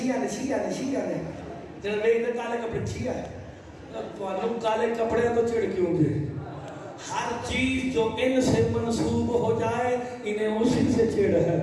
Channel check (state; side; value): identical; both; correlation 1.00